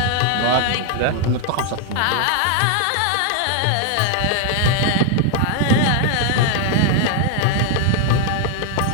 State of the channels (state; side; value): different; both; correlation 0.00